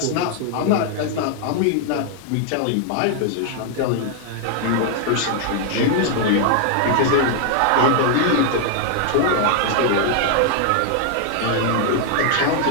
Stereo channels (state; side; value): different; both; correlation 0.00